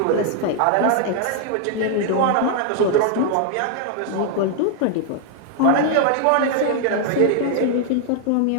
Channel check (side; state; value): both; different; correlation 0.00